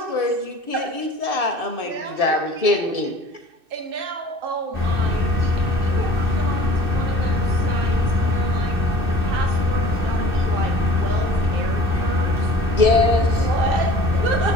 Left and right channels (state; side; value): late; left; 2.6 ms